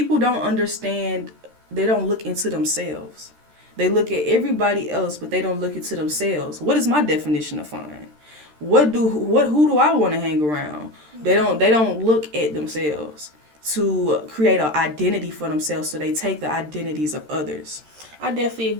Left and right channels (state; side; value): late; left; 13 ms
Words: don't understand, they don't look into themselves. They look at everybody else, but they don't look into themselves. What is my definition of fun? Who do I want to hang around? They don't look at themselves to create an identity for themselves, so they take the identities of others. I definitely